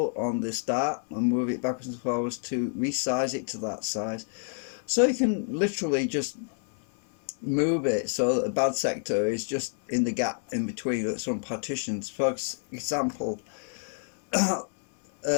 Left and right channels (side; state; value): right; silent; digital silence